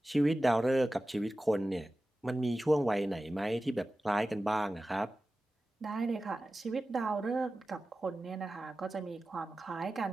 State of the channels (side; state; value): both; normal; correlation 0.95